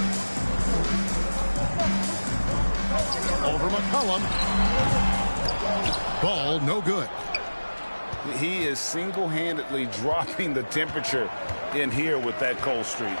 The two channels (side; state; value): both; inverted; correlation -1.00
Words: Over McCollum. Ball, no good. He is single-handedly dropping the temperature in here with that cold streak.